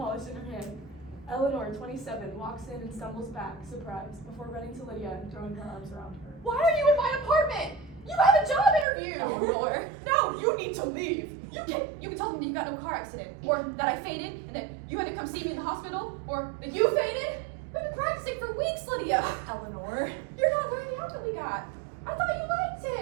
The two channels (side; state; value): left; drops out; at 8.8 s